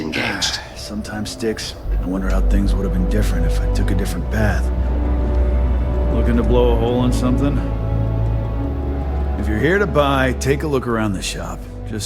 Sometimes sticks. I wonder how things would have been different if I took a different path. Looking to blow a hole in something? If you're here to buy, take a look around the shop.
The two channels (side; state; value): both; identical; correlation 1.00